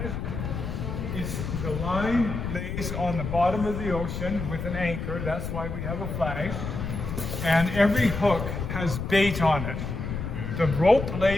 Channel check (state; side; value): noise; left; rumble, 5 dB below the sound